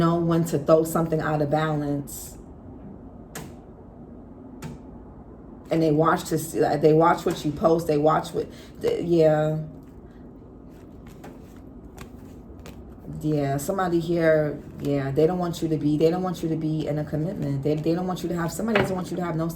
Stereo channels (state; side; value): identical; both; correlation 1.00